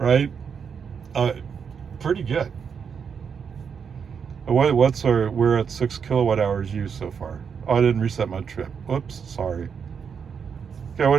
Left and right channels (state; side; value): quieter; left; 6.7 dB